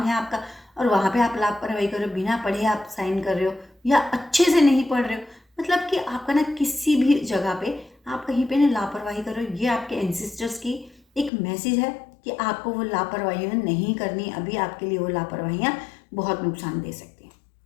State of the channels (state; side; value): drops out; right; at 11.3 s